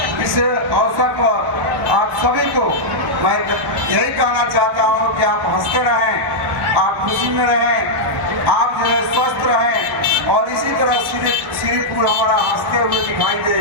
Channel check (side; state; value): left; late; 1.1 ms